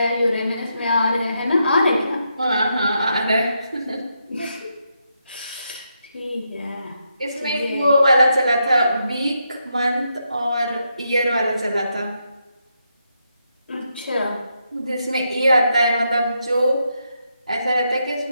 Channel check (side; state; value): both; inverted; correlation -0.81